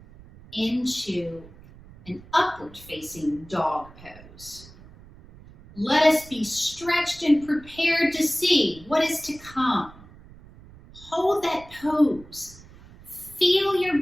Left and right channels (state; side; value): noise; right; rumble, 21 dB below the sound